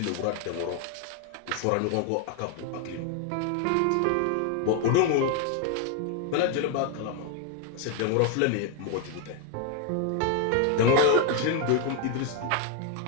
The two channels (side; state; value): both; different; correlation 0.01